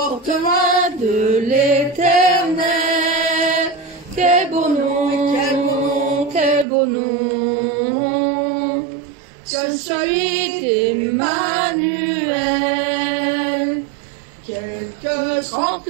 loin de l'Éternel. Quel beau nom, quel beau nom, quel beau nom, que celui d'Emmanuel. Quelque grand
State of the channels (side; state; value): left; drops out; at 6.7 s